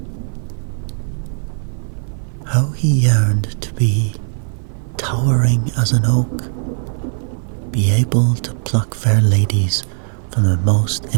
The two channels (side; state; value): left; silent; 56 dB below the other